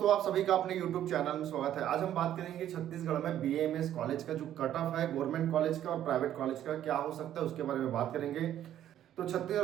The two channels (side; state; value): left; quieter; 11.4 dB